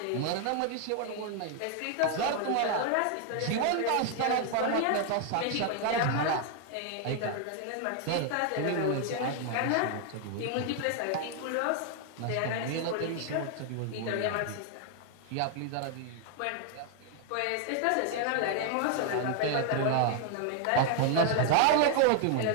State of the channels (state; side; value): different; both; correlation 0.00